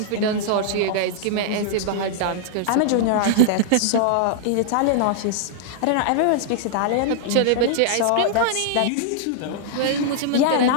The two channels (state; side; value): different; both; correlation -0.01